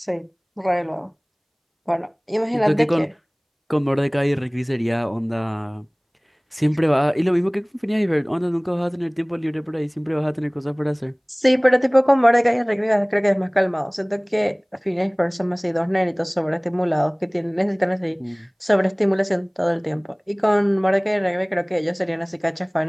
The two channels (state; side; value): identical; both; correlation 1.00